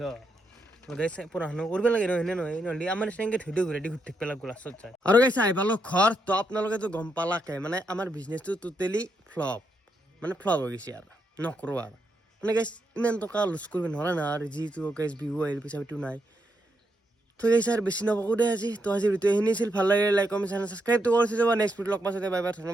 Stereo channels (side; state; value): both; normal; correlation 0.80